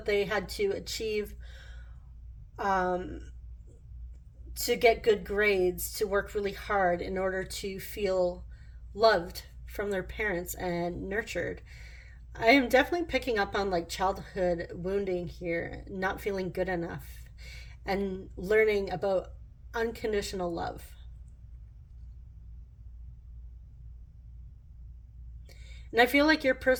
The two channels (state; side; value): identical; both; correlation 1.00